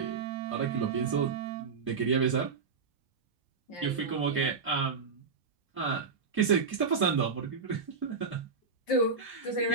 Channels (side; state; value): left; quieter; 5.0 dB